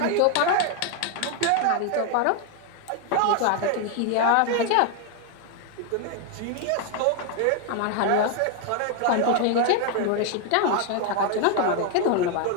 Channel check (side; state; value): both; different; correlation 0.01